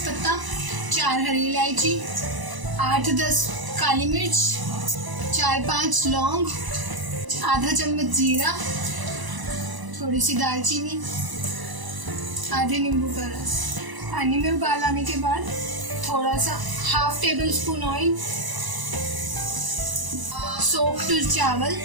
4 हरी इलायची, 8-10 काली मिर्च, 4-5 लौंग, आधा चम्मच जीरा, थोड़ी सी दालचीनी, आधे नींबू का रस। पानी में उबाल आने के बाद थोड़ा सा 1/2 टेबलस्पून ऑयल, सोक्ड चावल,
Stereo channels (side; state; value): left; late; 1.0 ms